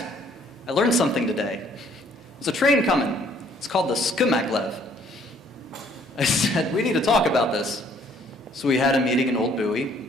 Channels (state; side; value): normal; both; correlation 0.62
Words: I learned something today. There's a train coming. It's called the skmaglev. I said, we need to talk about this. So we had a meeting in Old Bowie,